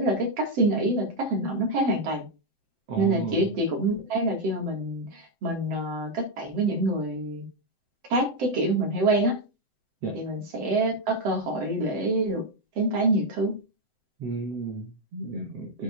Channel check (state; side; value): late; left; 7.8 ms